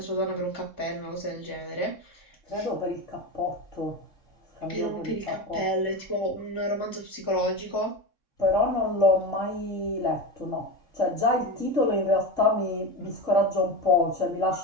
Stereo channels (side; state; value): left; late; 3.6 ms